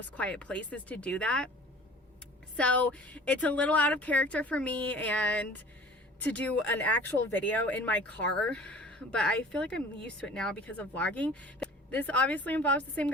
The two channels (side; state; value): both; normal; correlation 0.45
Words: quiet places to do that. So it's a little out of character for me and to do an actual video in my car, but I feel like I'm used to it now because of vlogging. This obviously involves the same